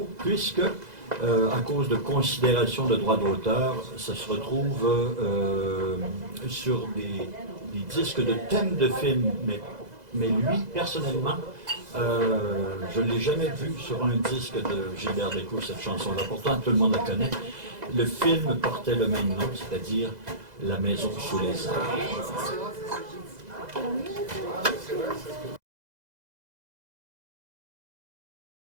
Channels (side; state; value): left; late; 2.0 ms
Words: puisque, à cause de considérations de droits d'auteur, ça se retrouve sur des disques de thèmes de films. Mais lui, personnellement, je ne l'ai jamais vu sur un disque de Gilbert Bécaud, cette chanson-là. Pourtant, tout le monde la connaît. Le film portait le même nom, c'est-à-dire La maison sous les arbres.